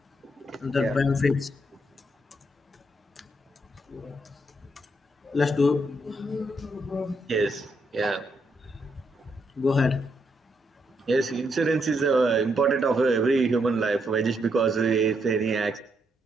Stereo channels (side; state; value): both; normal; correlation 0.77